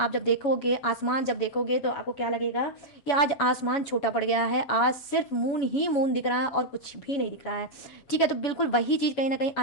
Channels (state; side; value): late; right; 7.1 ms